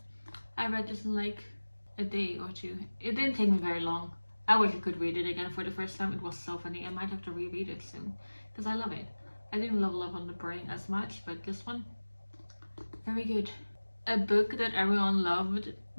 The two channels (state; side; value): inverted; both; correlation -1.00